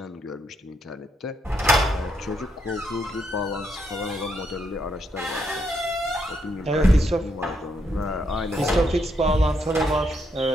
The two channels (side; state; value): both; normal; correlation 0.77